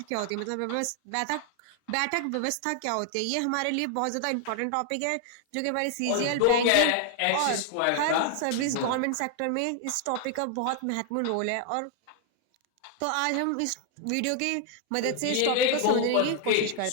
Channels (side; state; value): both; different; correlation 0.00